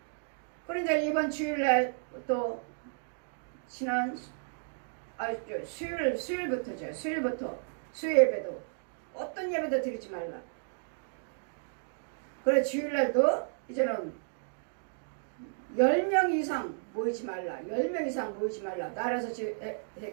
그런데 이번 주일날 또 지난 수요일부터죠. 수요일부터 수요 예배도 어떤 예배도 드리지 말라. 그래 주일날도 이제는 10명 이상 모이지 말라. 10명 이상 모이지 말라. 나라에서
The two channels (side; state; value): left; silent; digital silence